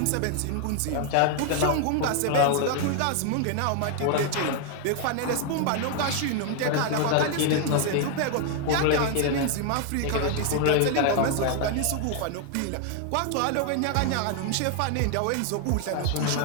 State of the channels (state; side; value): different; both; correlation 0.00